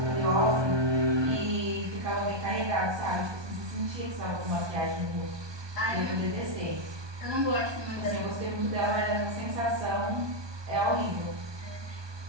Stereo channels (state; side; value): late; left; 1.2 ms